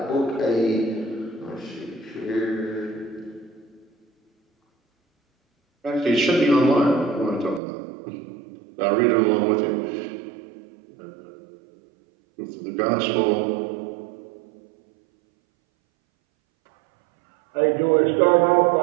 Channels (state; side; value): drops out; left; at 7.6 s